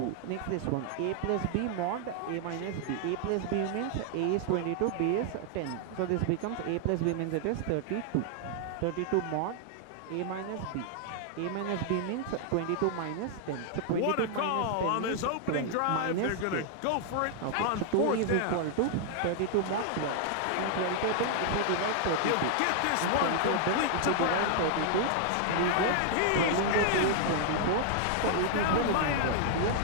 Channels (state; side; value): different; both; correlation 0.00